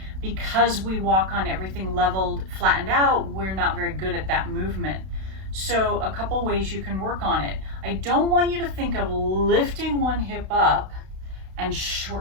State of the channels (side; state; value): left; late; 32 ms